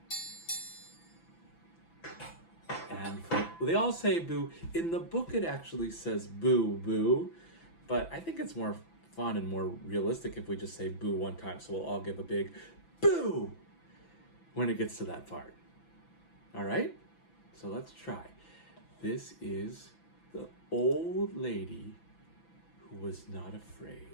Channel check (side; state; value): right; late; 6.0 ms